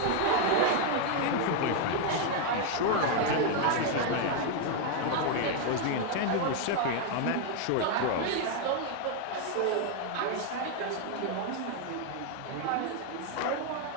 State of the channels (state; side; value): different; both; correlation 0.01